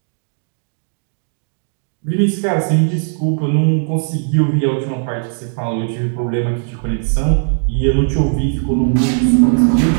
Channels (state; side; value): silent; left; 68 dB below the other